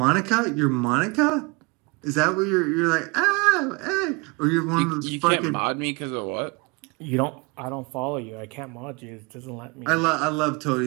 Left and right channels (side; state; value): left; quieter; 27.8 dB